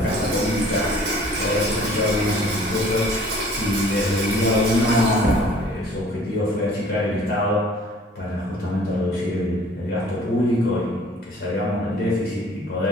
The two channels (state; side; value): normal; both; correlation 0.53